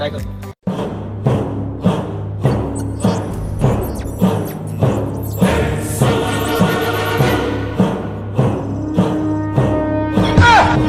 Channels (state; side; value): identical; both; correlation 1.00